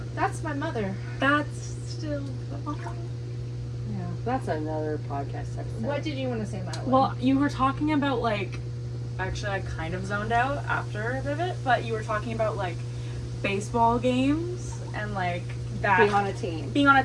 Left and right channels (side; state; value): both; identical; correlation 1.00